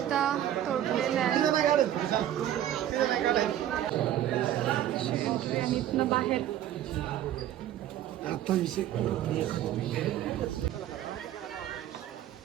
तोडलेल्या आहेत आणि इथनं बाहेर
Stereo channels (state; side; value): quieter; left; 11.9 dB